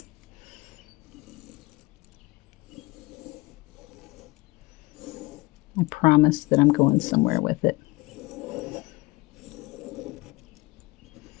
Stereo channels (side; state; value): right; quieter; 22.5 dB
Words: I promise that I'm going somewhere with it.